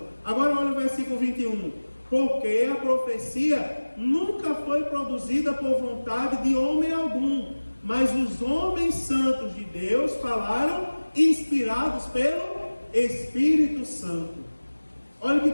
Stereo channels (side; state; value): both; inverted; correlation -1.00